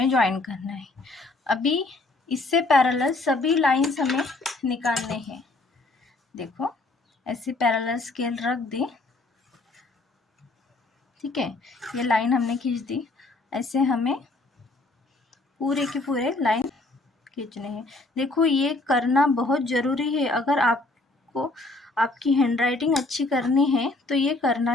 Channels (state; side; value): quieter; right; 3.1 dB